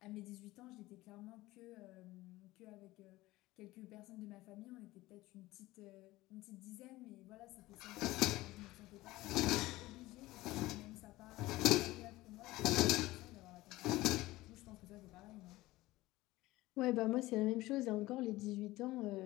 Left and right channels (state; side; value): quieter; right; 18.4 dB